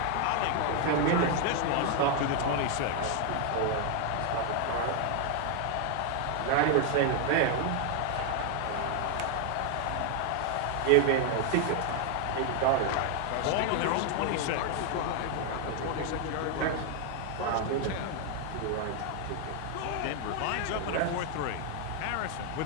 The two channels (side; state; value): both; different; correlation 0.01